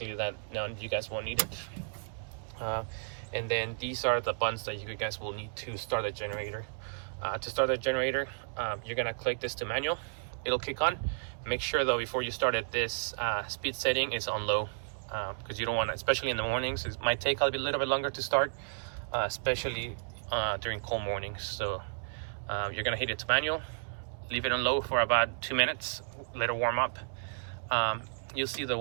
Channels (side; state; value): left; silent; digital silence